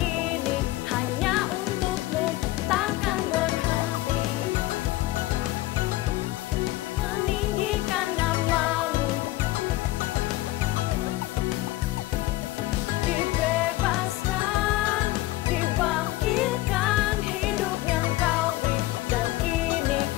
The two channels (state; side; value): quieter; right; 17.5 dB